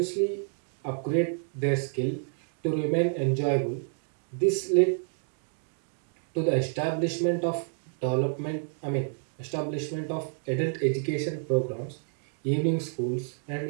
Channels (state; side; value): silent; left; 56 dB below the other